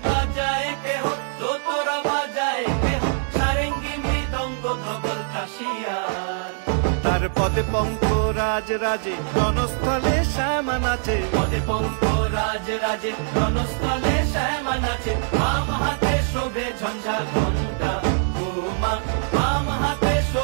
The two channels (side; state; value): left; silent; 63 dB below the other